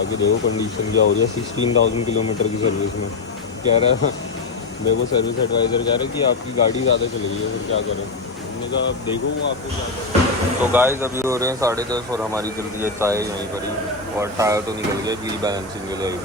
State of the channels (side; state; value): right; quieter; 3.8 dB